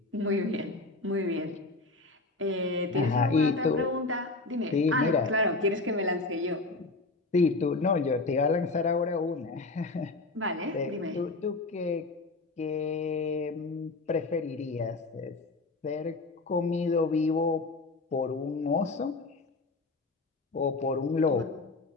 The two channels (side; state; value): right; quieter; 3.4 dB